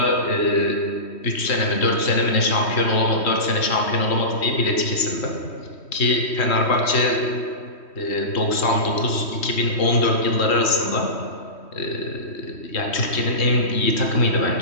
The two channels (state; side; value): late; right; 3.1 ms